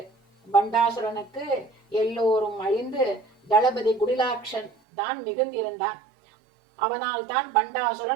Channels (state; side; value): drops out; left; at 4.7 s